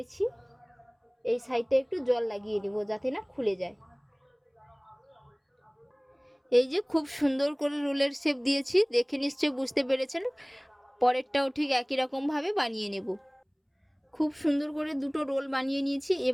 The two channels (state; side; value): identical; both; correlation 1.00